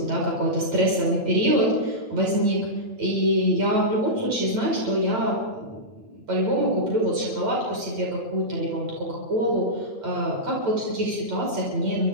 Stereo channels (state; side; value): late; left; 8.8 ms